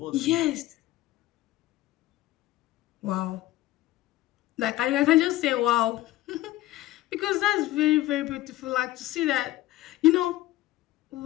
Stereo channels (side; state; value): right; quieter; 16.0 dB